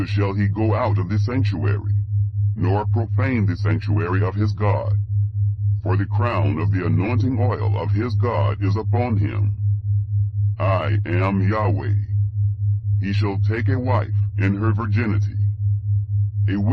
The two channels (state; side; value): identical; both; correlation 1.00